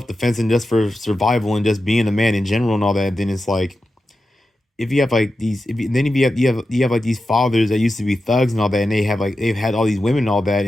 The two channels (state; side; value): normal; both; correlation 0.91